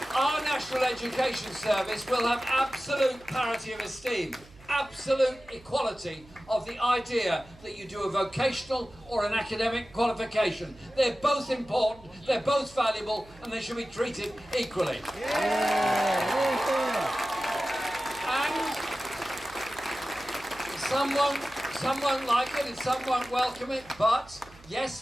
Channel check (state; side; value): noise; right; hum, 24 dB below the sound